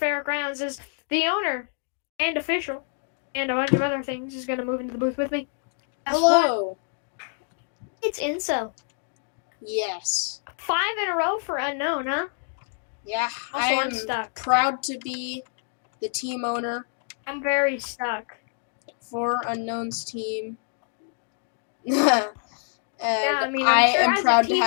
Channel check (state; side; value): silent; right; 61 dB below the other